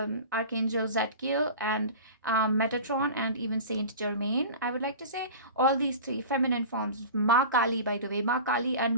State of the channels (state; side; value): inverted; both; correlation -0.35